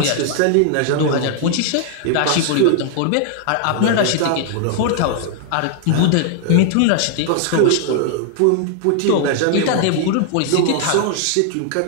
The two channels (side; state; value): both; different; correlation 0.00